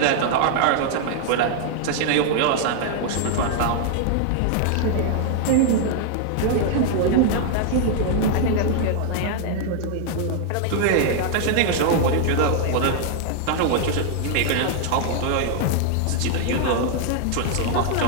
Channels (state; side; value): different; both; correlation 0.00